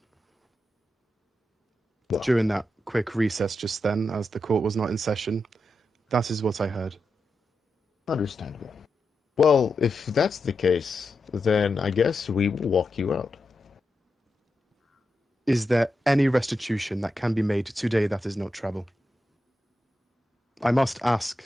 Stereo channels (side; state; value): both; normal; correlation 0.88